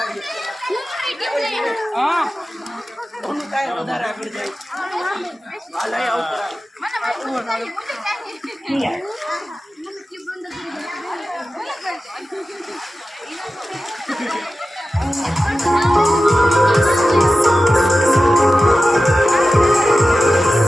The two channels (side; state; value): both; normal; correlation 0.94